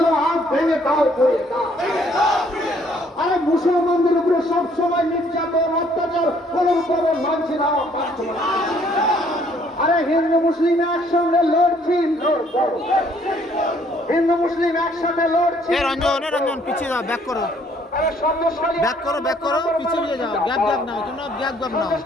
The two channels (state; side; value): normal; both; correlation 0.63